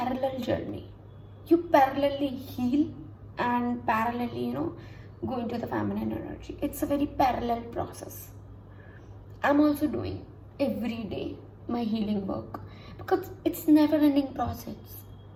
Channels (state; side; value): identical; both; correlation 1.00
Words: journey. You parallelly heal and parallelly go into the feminine energy. It's a very parallel process. I'm also doing every day my healing work because it's never ending process.